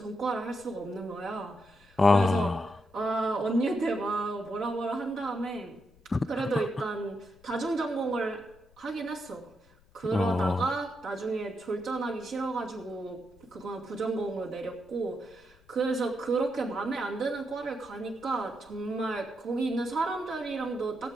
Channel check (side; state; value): left; noise; rumble, 29 dB below the sound